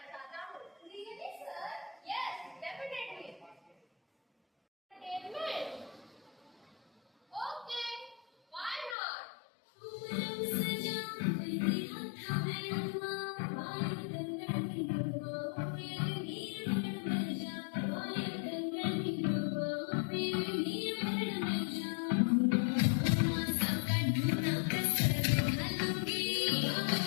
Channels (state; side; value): drops out; right; at 9.0 s